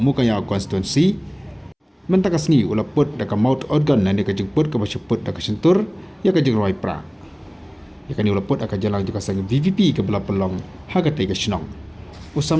constituency mentakasngi ula put da ka mouth organ na ni ka jingput ka basiput da ka sentur ya ka jingroi pra ya ka ni ula put aka jalang juga sang VVP ka bela pelong haga tai ka snong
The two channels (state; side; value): identical; both; correlation 1.00